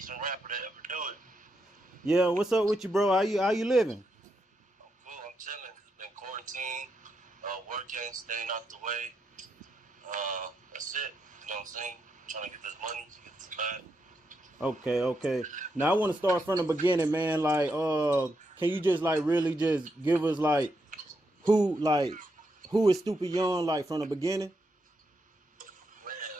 rapper to ever do it. Yeah, what's up with you, bro? How you living? I'm cool, I'm chilling. Been quarantined, working, staying out the way. That's it. You know what I'm saying? Trying to get this money, to get this bag. Okay. Now I want to start from the beginning, man. Can you just like really just give us who is Stupid Young like from the beginning?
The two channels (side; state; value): both; normal; correlation 0.82